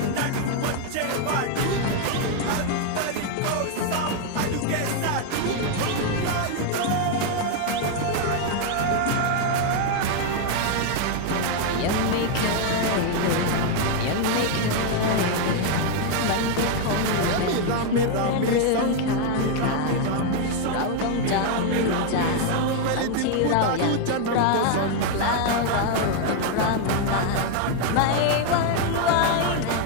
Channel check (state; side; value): different; both; correlation 0.01